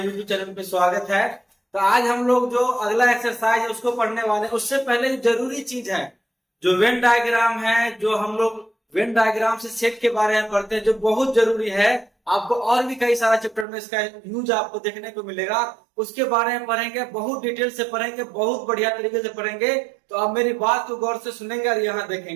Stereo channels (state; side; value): drops out; left; at 13.7 s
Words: यूट्यूब चैनल पे स्वागत है। तो आज हम लोग जो अगला एक्सरसाइज है उसको पढ़ने वाले हैं। उससे पहले जो जरूरी चीज है, जो वेन डायग्राम है, जो हम लोग वेन डायग्राम से सेट के बारे में पढ़ते हैं, जो बहुत जरूरी है। आपको और भी कई सारा चैप्टर में इसका यूज आपको देखने को मिलेगा। उसके बारे में पढ़ेंगे, बहुत डिटेल से पढ़ेंगे, बहुत बढ़िया तरीके से पढ़ेंगे। तो आप मेरी बात को गौर से सुनेंगे और यहाँ